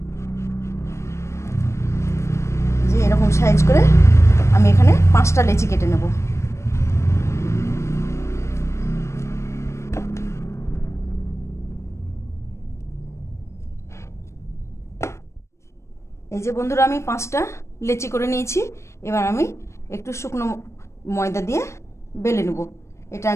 যে এরকম সাইজ করে আমি এখানে 5টা লেচি কেটে নেব। এই যে বন্ধুরা, আমি 5টা লেচি করে নিয়েছি। এবার আমি একটু শুকনো ময়দা দিয়ে বেলে নেব। এটা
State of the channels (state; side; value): late; right; 0.13 ms